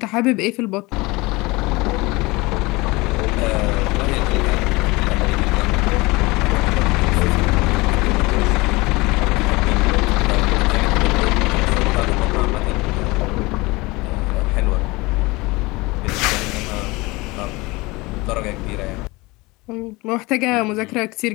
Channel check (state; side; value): quieter; right; 23.2 dB